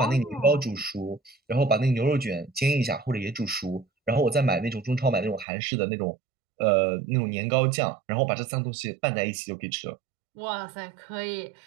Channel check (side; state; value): left; drops out; at 5.5 s